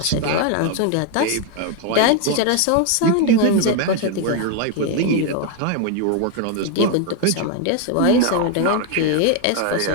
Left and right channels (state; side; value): different; both; correlation 0.01